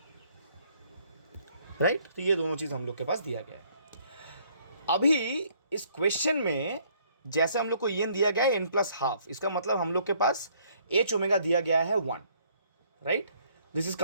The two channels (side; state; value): both; inverted; correlation -0.64